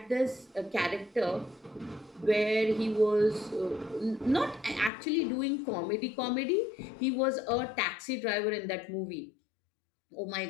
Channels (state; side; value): drops out; right; at 4.9 s